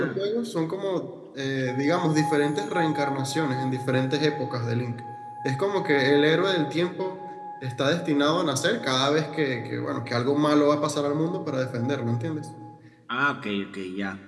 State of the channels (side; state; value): both; identical; correlation 1.00